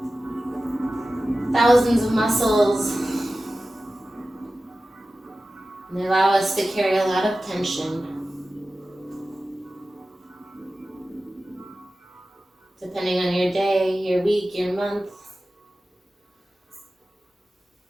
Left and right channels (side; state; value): both; normal; correlation 0.95